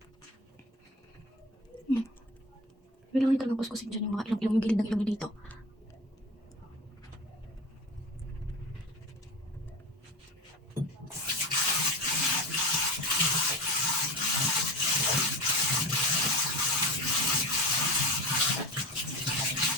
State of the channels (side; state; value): both; normal; correlation 0.30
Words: Kailangan nyo talagang kuskusin dyan yung mga ilong-ilong, yung gilid ng ilong nyo dito.